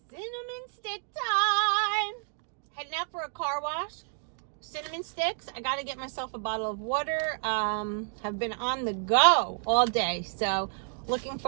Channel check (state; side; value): silent; left; 56 dB below the other